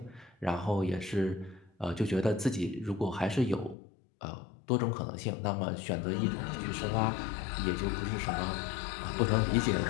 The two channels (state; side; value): drops out; right; at 3.8 s